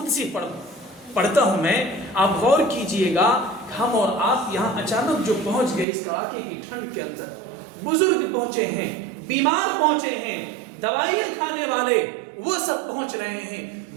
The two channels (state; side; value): drops out; left; at 5.9 s